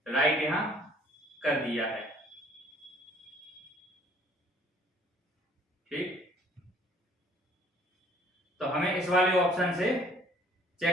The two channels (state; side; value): normal; both; correlation 0.58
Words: राइट यहाँ कर दिया है। ठीक, तो हमें इस वाले ऑप्शन से